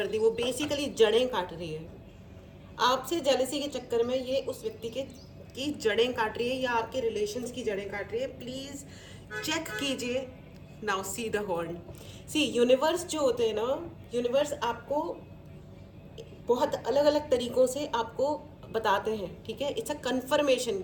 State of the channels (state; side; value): identical; both; correlation 1.00